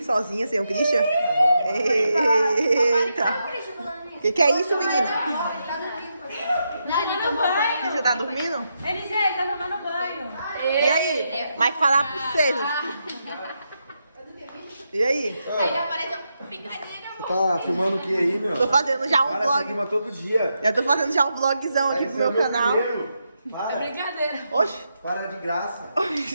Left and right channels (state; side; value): inverted; both; correlation -0.83